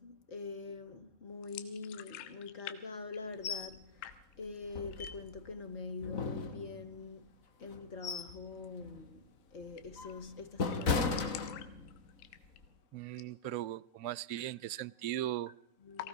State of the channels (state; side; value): late; right; 4.0 ms